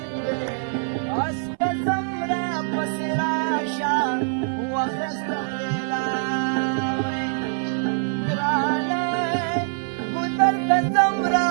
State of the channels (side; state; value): left; silent; 63 dB below the other